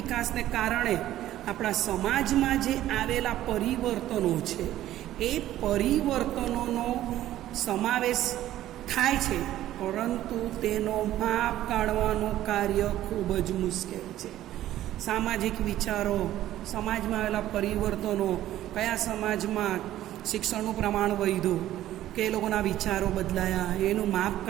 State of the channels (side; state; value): left; quieter; 13.5 dB